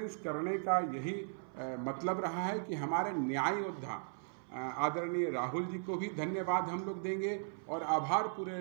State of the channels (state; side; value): silent; left; 53 dB below the other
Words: करने का यही मतलब रहा है कि हमारे न्याय योद्धा आदरणीय राहुल जी को भी धन्यवाद हम लोग देंगे, और आभार